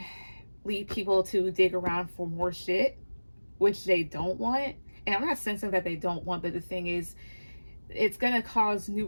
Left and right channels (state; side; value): inverted; both; correlation -1.00